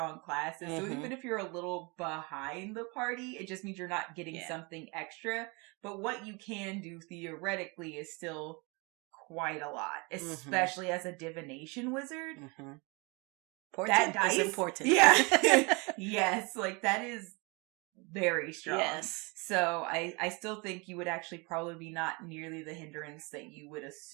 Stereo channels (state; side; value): quieter; left; 29.1 dB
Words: classes. So even if you're a little behind the party, it just means you're not getting something extra. But what you can do theoretically is still quite a lot, especially as a divination wizard. That dice is important. Yeah. Yes, like that is very strong. Yes. So I still think you would actually probably be not nearly the hindrance that you would